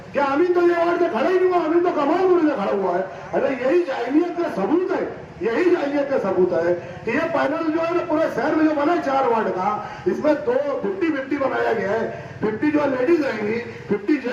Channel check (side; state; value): both; identical; correlation 1.00